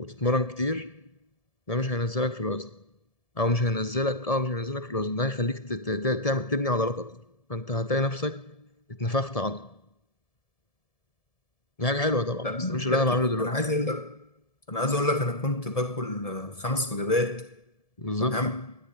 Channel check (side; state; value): right; late; 1.7 ms